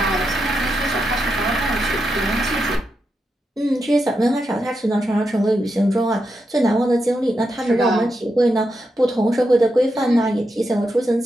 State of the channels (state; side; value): normal; both; correlation 0.86